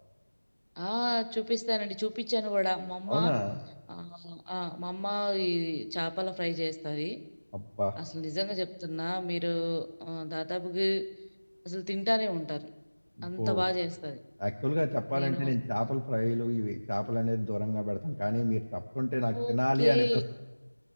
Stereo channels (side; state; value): both; inverted; correlation -1.00